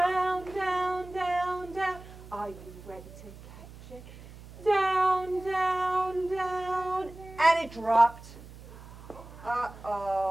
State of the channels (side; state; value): right; noise; hum, 17 dB below the sound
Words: down, down, down. Are you ready to catch it? Down, down, down. And it dropped.